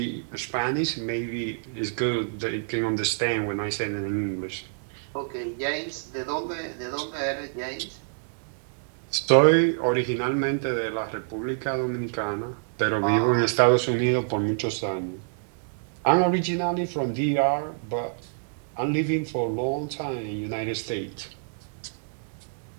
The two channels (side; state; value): left; silent; digital silence